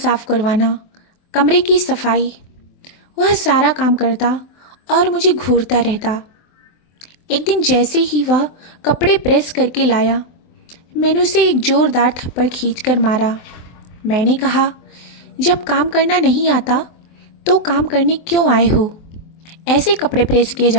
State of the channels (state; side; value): late; right; 23 ms